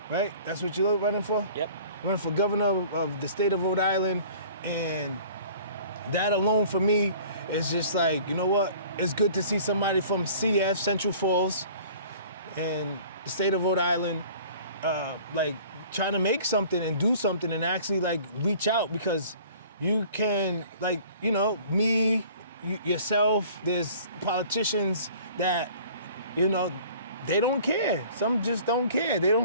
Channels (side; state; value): both; inverted; correlation -0.49